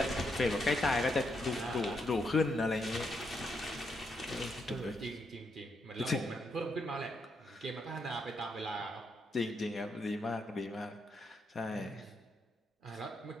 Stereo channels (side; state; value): both; normal; correlation 0.79